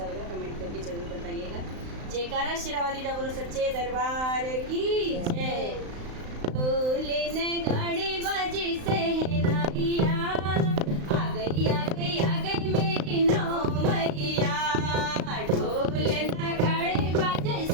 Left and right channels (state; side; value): late; left; 35 ms